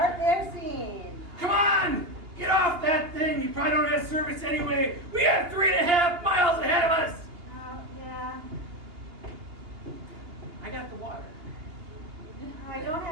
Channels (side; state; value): left; late; 2.8 ms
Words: their scene. Come on! Get off that thing! You probably don't have service anyway! We have 3.5 miles ahead of us! Yeah. I got the water. I don't